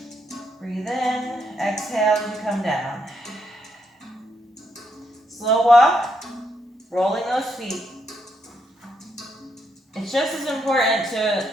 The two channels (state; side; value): normal; both; correlation 0.77